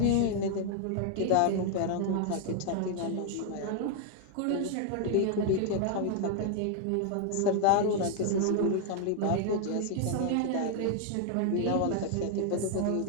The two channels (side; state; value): both; different; correlation 0.00